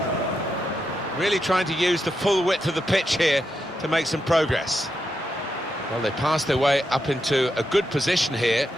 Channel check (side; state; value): both; normal; correlation 0.84